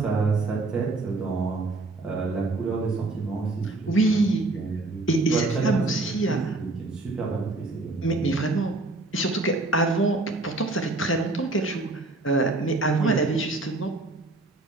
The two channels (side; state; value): left; quieter; 3.0 dB